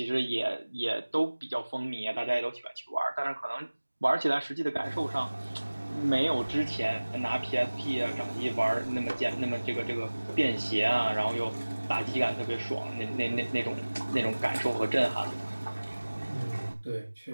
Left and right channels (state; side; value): inverted; both; correlation -1.00